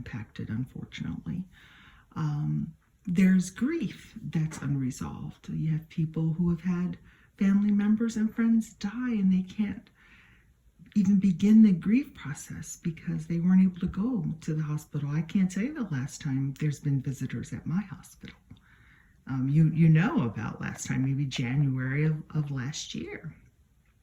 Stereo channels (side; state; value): both; identical; correlation 1.00